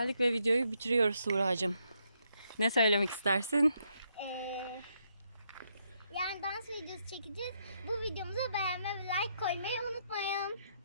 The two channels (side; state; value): both; inverted; correlation -0.76